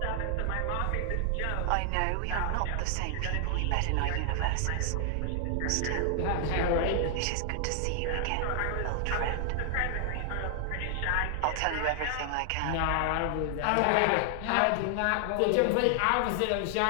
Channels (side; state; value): both; different; correlation 0.00